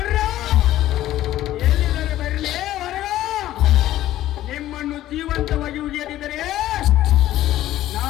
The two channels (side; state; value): right; quieter; 13.9 dB